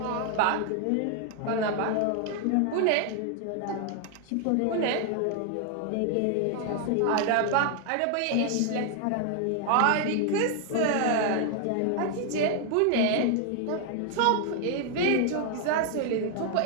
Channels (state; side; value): different; both; correlation 0.00